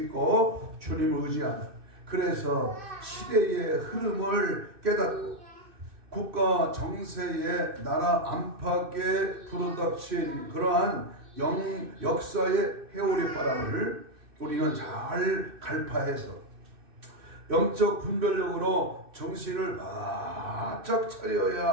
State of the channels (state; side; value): late; left; 2.6 ms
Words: 주님을 의지하는, 그래서 시대의 흐름을 깨닫고 국가 정세의 나라 안팎에 불어닥친 그러한 역사의 회오리 바람을 우리는 잘 갈파해서 영적 분별력으로 정신을 바짝 차려야